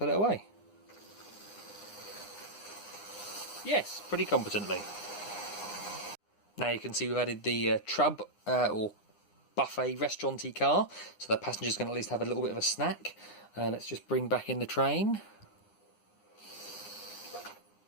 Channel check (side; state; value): right; late; 9.8 ms